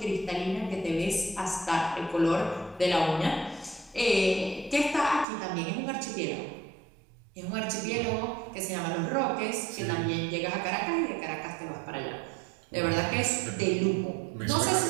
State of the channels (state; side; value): drops out; left; at 5.2 s